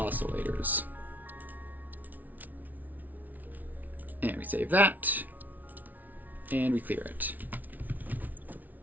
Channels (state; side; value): late; left; 0.079 ms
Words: And we save that, and we clear it.